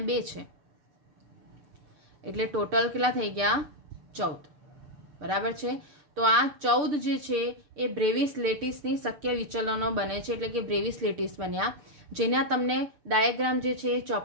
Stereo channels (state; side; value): late; left; 6.6 ms